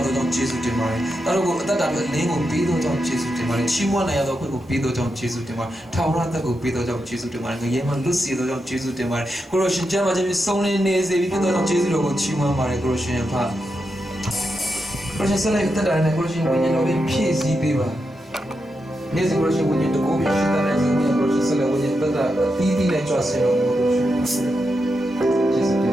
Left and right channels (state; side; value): normal; both; correlation 0.86